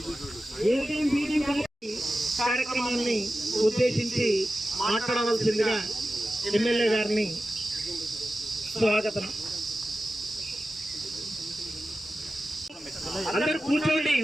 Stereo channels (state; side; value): normal; both; correlation 0.93